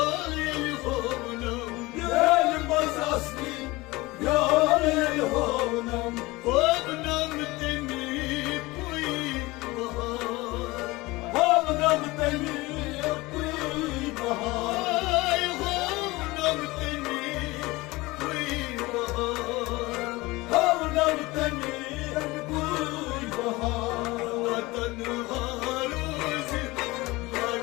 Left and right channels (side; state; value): right; quieter; 21.3 dB